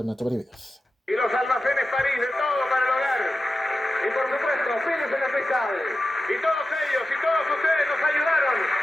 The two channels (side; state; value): both; normal; correlation 0.93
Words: en 8 videos. Y los almacenes París de todo para el hogar. Y por supuesto, Pérez en la Cristal. Y todos ellos y todos ustedes nos ayudaron.